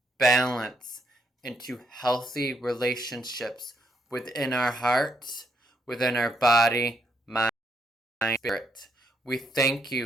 balance into healthy relationships within our hearts, within our body, mind, spirit. We thank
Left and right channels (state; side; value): normal; both; correlation 0.75